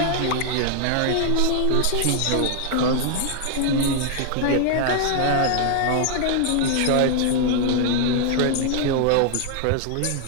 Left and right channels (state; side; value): different; both; correlation 0.00